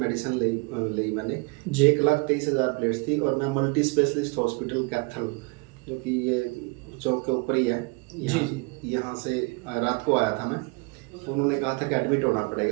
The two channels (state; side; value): quieter; left; 29.5 dB